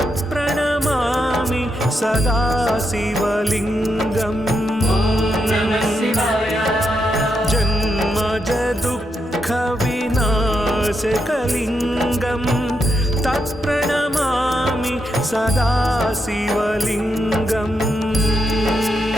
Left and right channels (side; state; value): both; normal; correlation 0.83